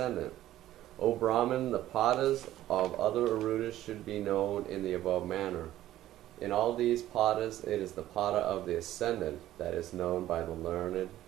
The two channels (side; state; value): left; quieter; 13.8 dB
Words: O Brahman, the padas of other Ārūḍhas should be known in the above manner. In all these padas, it is the pada of the ascendant that is known by the learned